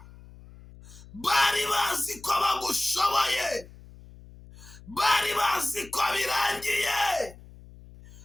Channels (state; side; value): noise; left; hum, 20 dB below the sound